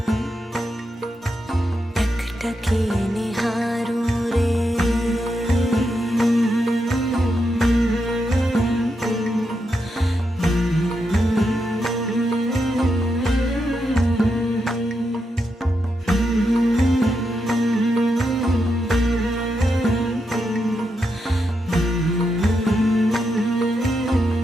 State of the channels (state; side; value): normal; both; correlation 0.84